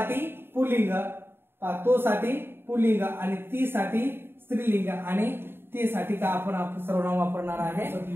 पुल्लिंग, तो साठी पुल्लिंग आणि ती साठी स्त्रीलिंग आणि ती साठी का आपण सर्वनाम वापरणार आहे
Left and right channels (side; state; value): left; late; 0.11 ms